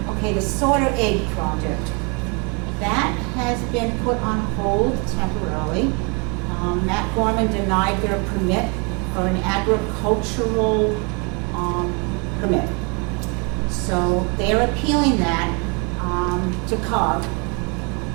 Okay, the Sorter Egg project. That has been put on hold temporarily. Matt Gorman denied their permit for an agricultural permit. So they're appealing that to COG,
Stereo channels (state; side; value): quieter; left; 32.6 dB